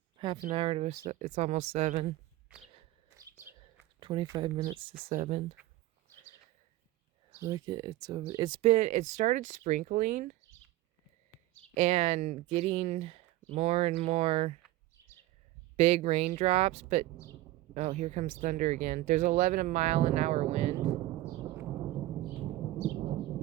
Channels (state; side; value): quieter; left; 16.2 dB